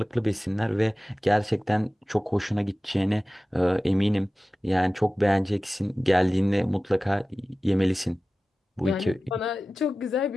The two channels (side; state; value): both; normal; correlation 0.96